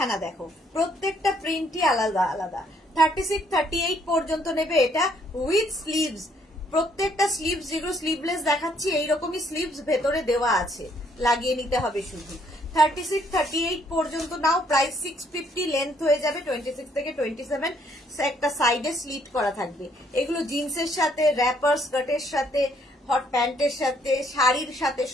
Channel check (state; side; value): normal; both; correlation 0.67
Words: দেখো, প্রত্যেকটা প্রিন্টই আলাদা আলাদা। 36, 38 পর্যন্ত নেবে, এটা উইথ স্লিভস। প্রত্যেকটা স্লিভস, যেগুলো স্লিভলেস দেখাচ্ছি, এইরকমই স্লিভস ভেতরে দেওয়া আছে, লাগিয়ে নিতে হবে শুধু। 36, 38 পর্যন্ত নাও। প্রাইস 650। লেন্থ হয়ে যাবে 26 থেকে 27। একটা সাইডে স্লিট করা থাকবে। এগুলো জিন্সের সাথে, র্যাপার স্কার্টের সাথে, হট প্যান্টের সাথে, শাড়ির সাথে,